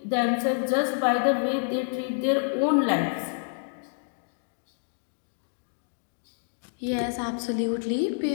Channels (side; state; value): right; silent; digital silence